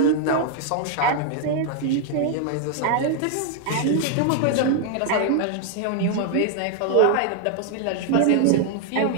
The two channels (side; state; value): both; different; correlation 0.00